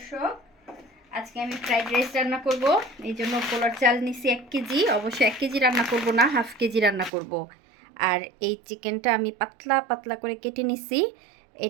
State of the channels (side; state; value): left; drops out; at 7.1 s